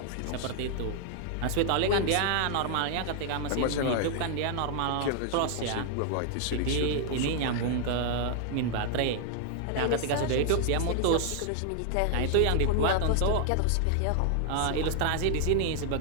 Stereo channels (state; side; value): different; both; correlation 0.00